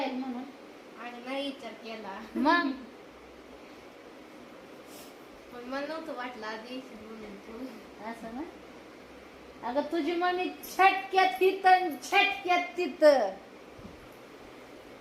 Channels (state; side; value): identical; both; correlation 1.00